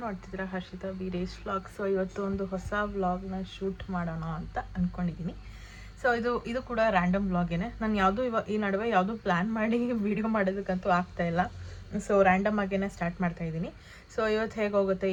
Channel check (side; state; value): both; identical; correlation 1.00